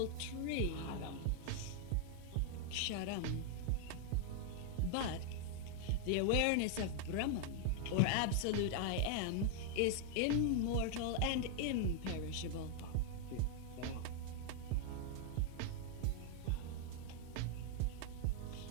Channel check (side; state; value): both; different; correlation 0.00